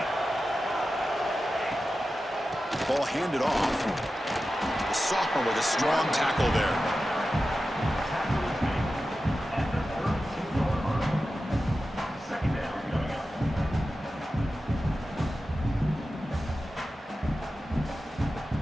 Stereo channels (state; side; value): normal; both; correlation 0.93